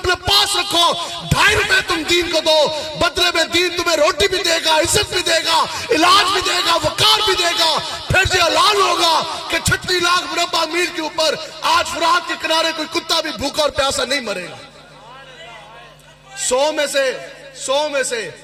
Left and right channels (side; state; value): both; identical; correlation 1.00